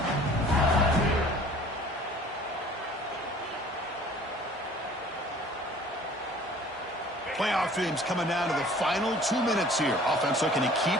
Playoff games coming down to the final 2 minutes here. Offense looking to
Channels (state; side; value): normal; both; correlation 0.50